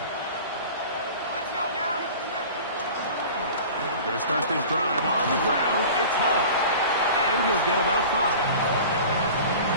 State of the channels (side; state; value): both; inverted; correlation -0.39